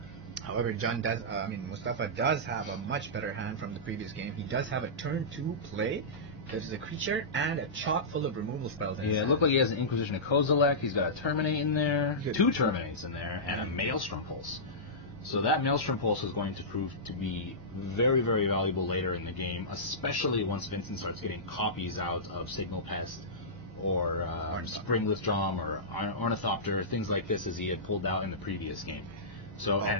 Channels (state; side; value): noise; left; hum, 27 dB below the sound